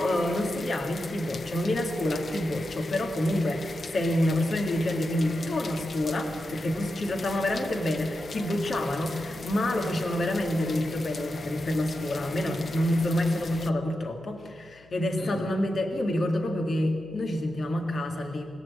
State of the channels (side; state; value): left; noise; hum, 28 dB below the sound